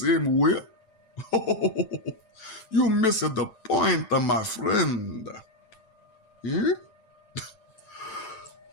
way. You missed the point, my friend. Yeah?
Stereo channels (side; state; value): right; late; 9.0 ms